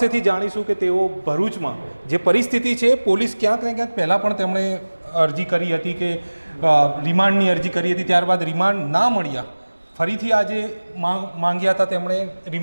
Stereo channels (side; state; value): both; inverted; correlation -1.00